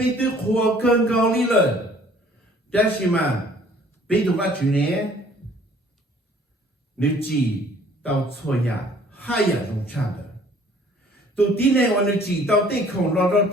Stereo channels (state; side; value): normal; both; correlation 0.56